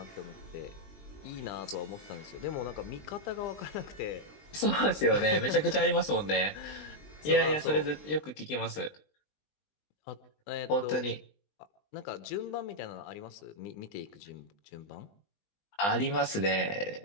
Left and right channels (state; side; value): late; right; 20 ms